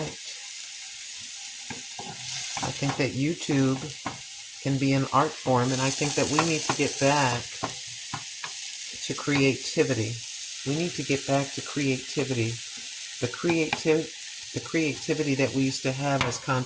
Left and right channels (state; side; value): identical; both; correlation 1.00